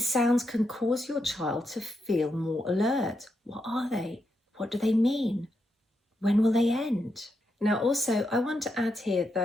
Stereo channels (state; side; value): normal; both; correlation 0.83